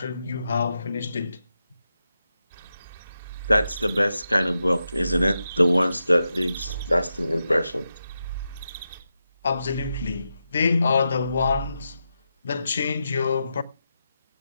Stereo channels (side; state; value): both; inverted; correlation -0.88